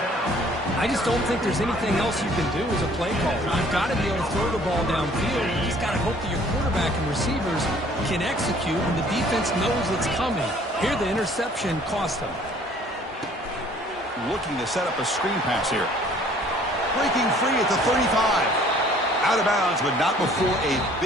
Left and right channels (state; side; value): normal; both; correlation 0.56